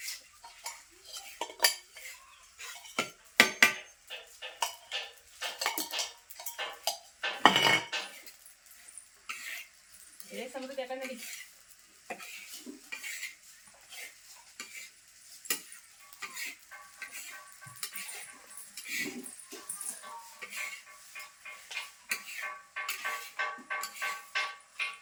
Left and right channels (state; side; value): identical; both; correlation 1.00